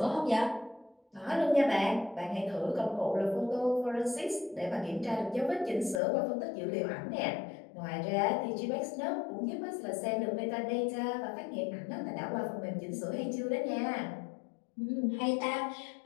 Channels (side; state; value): right; drops out; at 6.0 s